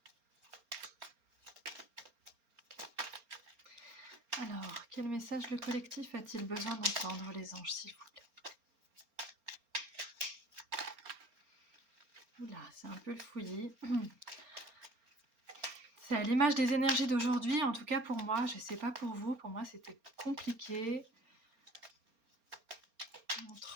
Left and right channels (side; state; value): left; late; 4.3 ms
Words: Alors, quel message le collectif a-t-il besoin d'entendre, les anges, s'il vous plaît? Oula, c'est un peu le fouillis. C'est à l'image des énergies d'aujourd'hui, en tout cas pour moi, je sais pas pour vous, pour moi c'était compliqué.